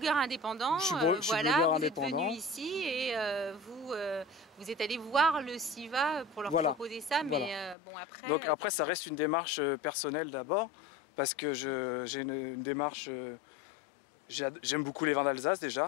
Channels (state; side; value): drops out; right; at 7.8 s